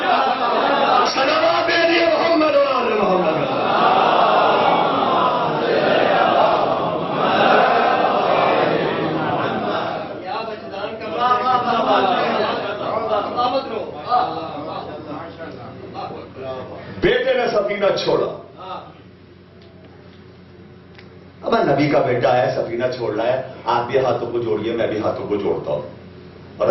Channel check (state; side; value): identical; both; correlation 1.00